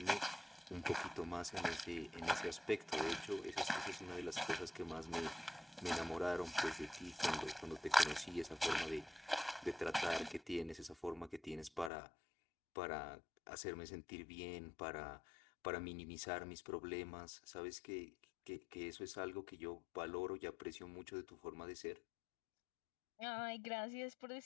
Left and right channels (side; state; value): right; drops out; at 11.9 s